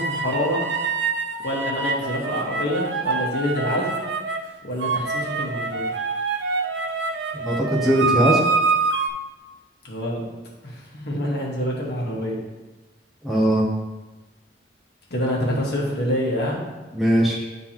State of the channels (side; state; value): both; normal; correlation 0.38